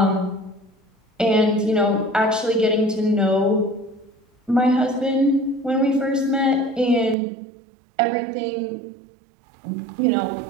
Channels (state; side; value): drops out; left; at 7.2 s